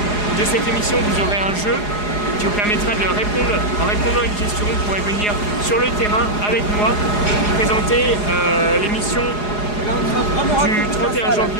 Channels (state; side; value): late; right; 4.8 ms